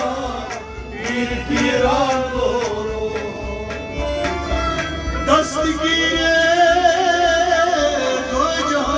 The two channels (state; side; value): identical; both; correlation 1.00